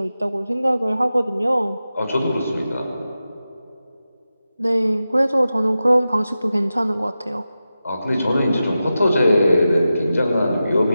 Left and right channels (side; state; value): both; inverted; correlation -0.92